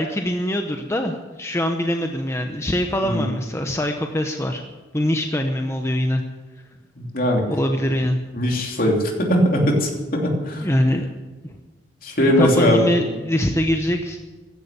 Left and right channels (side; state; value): both; normal; correlation 0.68